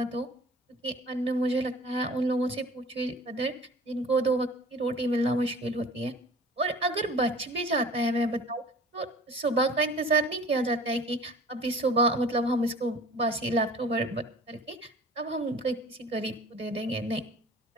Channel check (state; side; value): normal; both; correlation 0.44